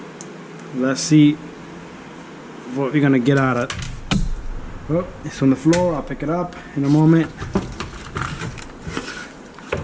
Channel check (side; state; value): both; identical; correlation 1.00